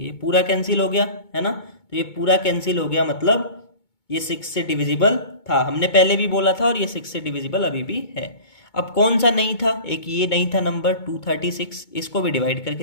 ये पूरा कैंसिल हो गया, है ना। तो ये पूरा कैंसिल हो गया, मतलब ये 6 से डिविजिबल था, हमने पहले भी बोला था, और ये 6 से डिविजिबल अभी भी है। अब कौन सा नहीं था? एक ये नहीं था नंबर 236, इसको भी डिवाइड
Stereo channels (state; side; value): late; right; 2.2 ms